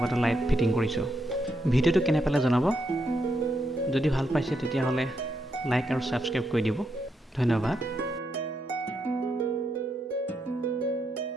লাইট ফিটিং কৰিছোঁ। ভিডিঅ'টো কেনে পালে জনাব। যদি ভাল পাইছে তেতিয়াহ'লে লাইক আৰু ছাবস্ক্ৰাইব কৰি দিব। ধন্যবাদ।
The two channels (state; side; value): normal; both; correlation 0.81